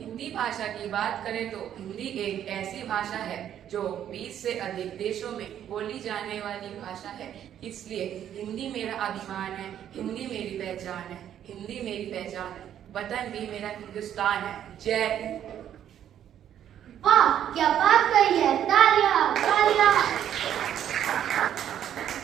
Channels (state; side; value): quieter; left; 10.3 dB